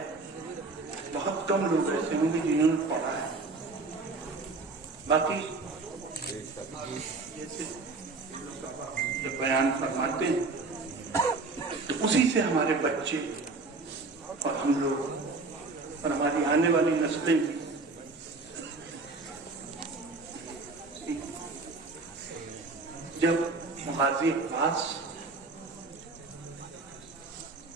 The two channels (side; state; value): left; quieter; 3.8 dB